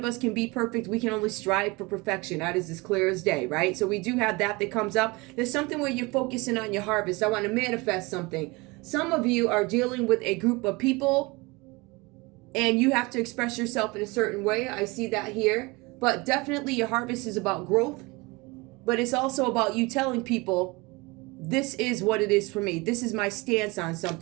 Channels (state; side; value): quieter; left; 24.8 dB